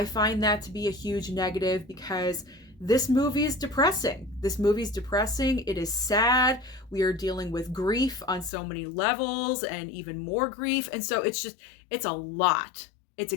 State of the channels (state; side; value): drops out; right; at 8.5 s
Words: find that to be a huge negative because this movie is depressing. This movie is depressing. It is sad. We are dealing with grief on so many levels and even more grief. And so it's a lot. It's